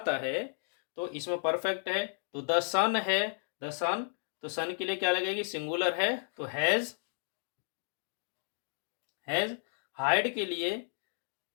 है। तो इसमें परफेक्ट है तो द सन है, द सन, तो सन के लिए क्या लगेगी? सिंगुलर है तो हैज। हैज, हाइड के लिए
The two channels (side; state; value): right; silent; digital silence